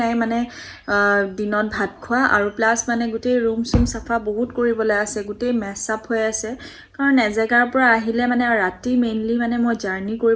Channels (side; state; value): both; identical; correlation 1.00